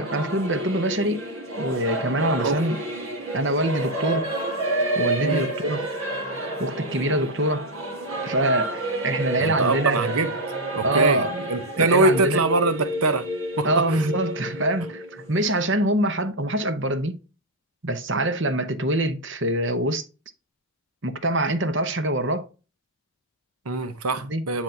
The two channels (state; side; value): normal; both; correlation 0.01